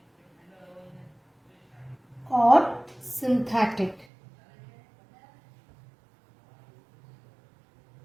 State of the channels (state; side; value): drops out; left; at 4.0 s